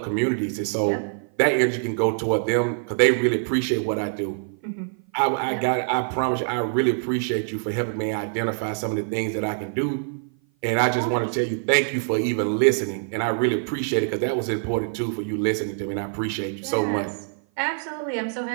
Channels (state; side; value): silent; left; 56 dB below the other